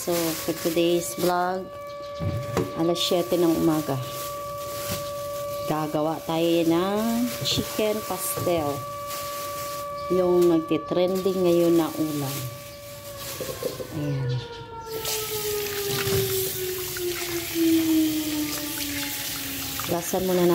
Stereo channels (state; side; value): identical; both; correlation 1.00